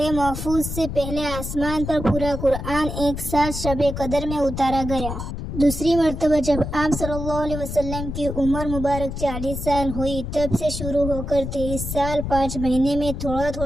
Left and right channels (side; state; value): left; noise; rumble, 6 dB below the sound